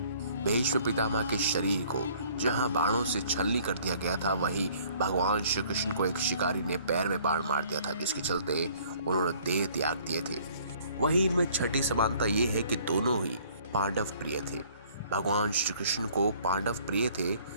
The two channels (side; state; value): both; inverted; correlation -0.57